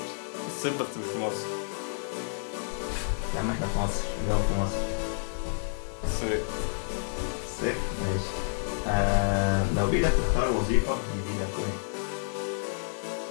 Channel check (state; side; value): silent; right; digital silence